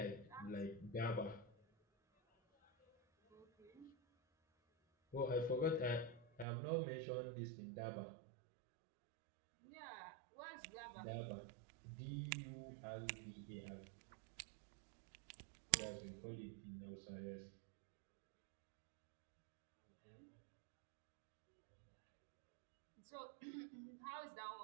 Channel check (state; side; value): drops out; left; at 6.5 s